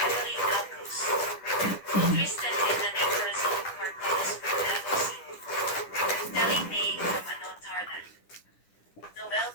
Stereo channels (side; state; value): right; late; 10 ms